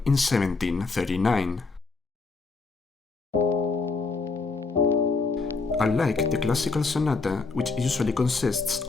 in 1739. Unlike the classical sonata, which usually consists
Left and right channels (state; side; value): quieter; right; 4.1 dB